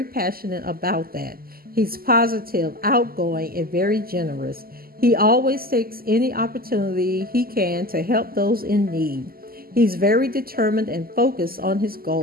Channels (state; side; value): late; left; 0.43 ms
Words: passionate about that. He's positive, outgoing, and very generous. He always takes any opportunity he can to help those in need. He's very determined and focused on his